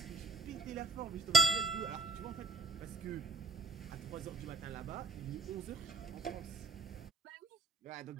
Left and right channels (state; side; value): quieter; left; 3.7 dB